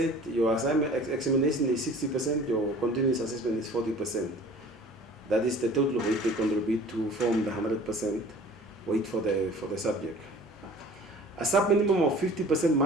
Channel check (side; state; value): both; normal; correlation 0.46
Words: your assignment examination is 60%, your continuous assessment is 40%. That is the total weight they contribute to form the 100% weight for the subject. A sub-minimum of 50%